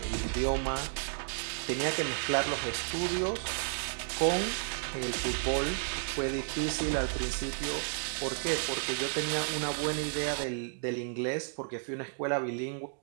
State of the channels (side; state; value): left; silent; digital silence